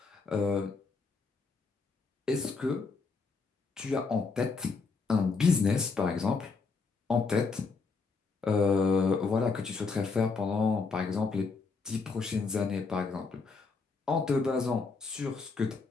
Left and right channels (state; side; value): quieter; right; 4.5 dB